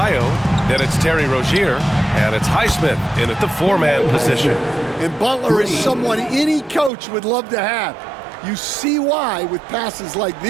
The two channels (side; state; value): left; drops out; at 6.9 s